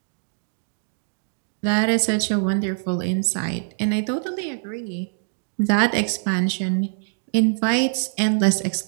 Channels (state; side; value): silent; left; 63 dB below the other